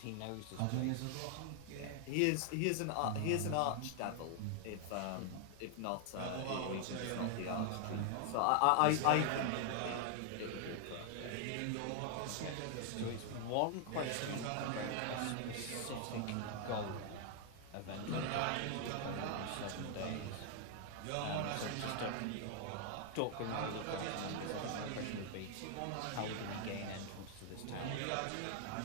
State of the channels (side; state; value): both; different; correlation 0.00